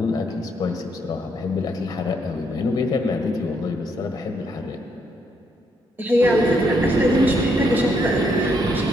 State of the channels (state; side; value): normal; both; correlation 0.74